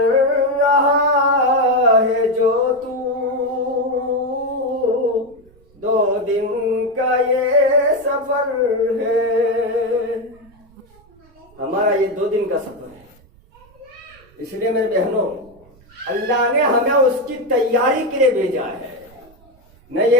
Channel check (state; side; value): noise; right; rumble, 28 dB below the sound